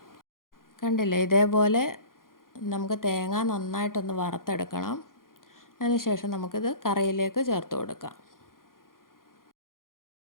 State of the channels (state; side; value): late; right; 0.91 ms